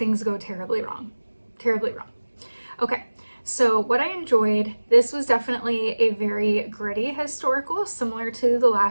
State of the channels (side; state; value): both; inverted; correlation -1.00